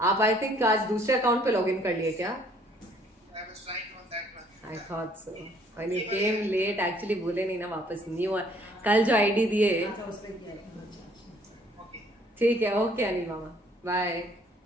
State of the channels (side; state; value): both; normal; correlation 0.61